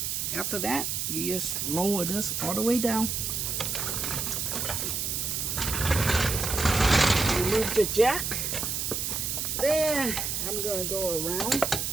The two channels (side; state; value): right; noise; hiss, 1 dB below the sound